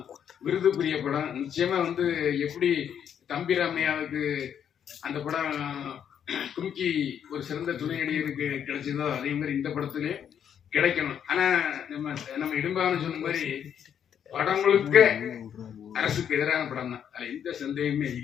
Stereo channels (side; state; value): right; quieter; 8.7 dB